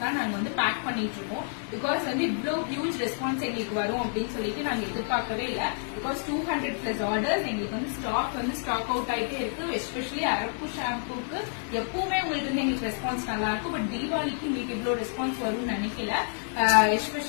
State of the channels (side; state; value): right; silent; 59 dB below the other